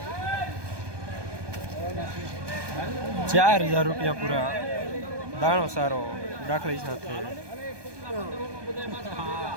4000 રૂપિયા પૂરા દાણો સારો દાખલી સાથે.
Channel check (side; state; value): left; late; 1.2 ms